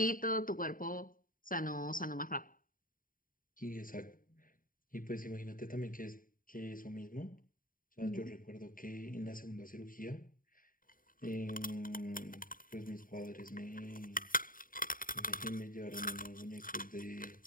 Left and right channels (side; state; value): right; late; 0.40 ms